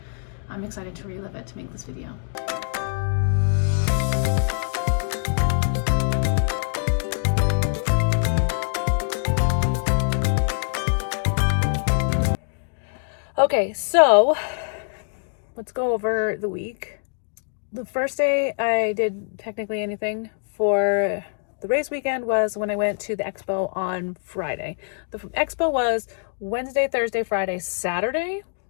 I'm excited to relive it to make this video. Okay, so let's go over the week. The first day I did technically anything for the race weekend was when I went to the expo on Friday. The expo was Wednesday, Thursday, Friday, Saturday,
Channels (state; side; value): silent; right; digital silence